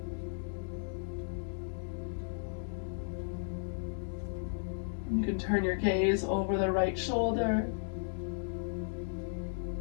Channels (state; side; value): silent; right; digital silence